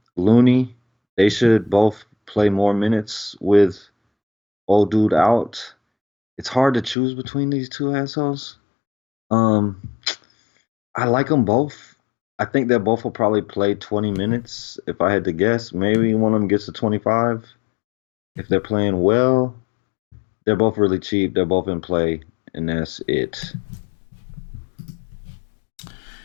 Looney, they should both play more minutes with old dude out. It's hard to choose between these two assholes. Um, I like them both. I think they both will probably play 20 minutes if I had to guess. Maybe one of them gets to 25 if they're playing well. They're both really cheap. They're both in play, and that's it.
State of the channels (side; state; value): right; drops out; at 7.0 s